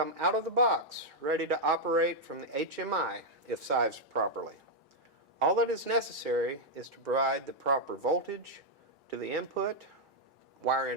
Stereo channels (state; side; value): normal; both; correlation -0.02